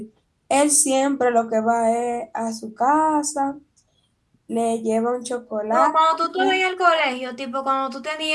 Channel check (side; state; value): both; identical; correlation 1.00